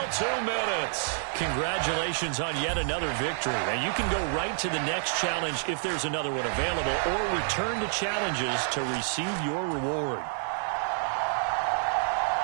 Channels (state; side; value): silent; left; 59 dB below the other